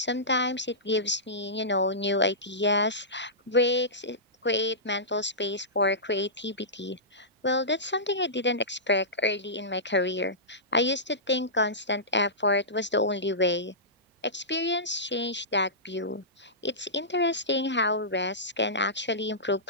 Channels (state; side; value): normal; both; correlation -0.18